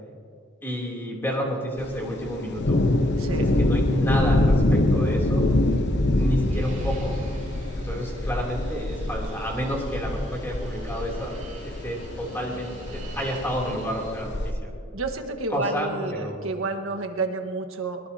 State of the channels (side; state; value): both; normal; correlation 0.69